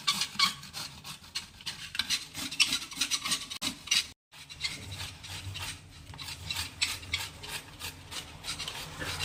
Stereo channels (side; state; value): both; identical; correlation 1.00